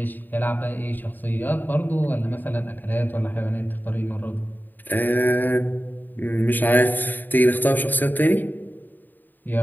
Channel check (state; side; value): late; right; 0.089 ms